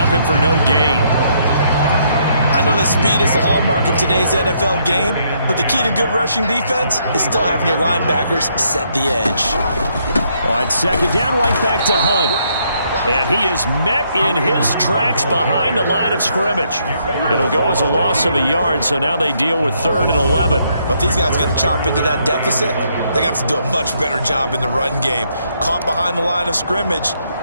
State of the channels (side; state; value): both; inverted; correlation -0.72